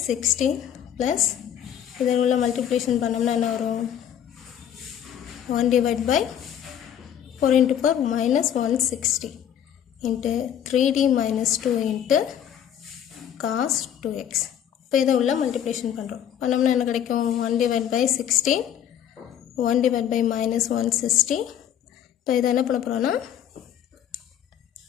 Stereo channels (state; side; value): quieter; right; 9.7 dB